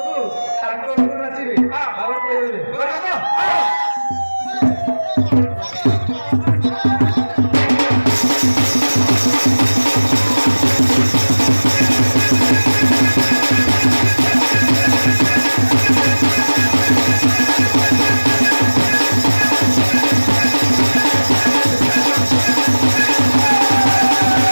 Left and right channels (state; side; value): inverted; both; correlation -1.00